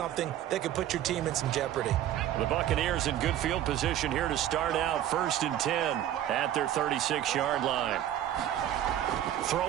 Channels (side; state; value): left; quieter; 11.8 dB